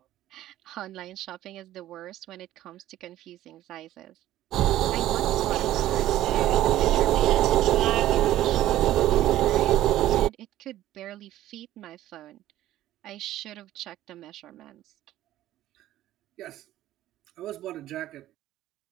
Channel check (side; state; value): left; quieter; 13.9 dB